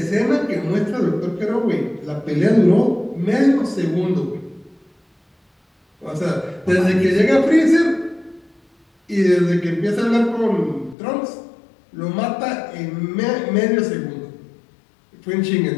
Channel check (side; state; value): right; drops out; at 11.0 s